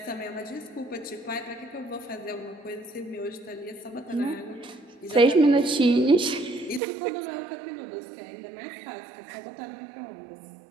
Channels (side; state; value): left; drops out; at 6.8 s